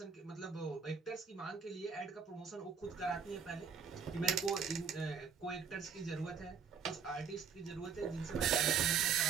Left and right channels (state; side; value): quieter; left; 6.5 dB